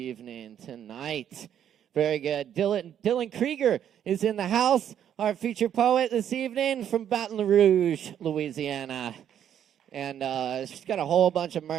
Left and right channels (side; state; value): left; quieter; 9.7 dB